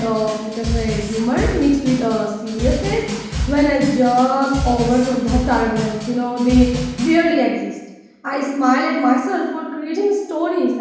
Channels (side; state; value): both; identical; correlation 1.00